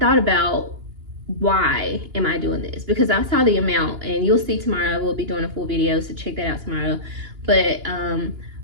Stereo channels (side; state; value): left; late; 2.9 ms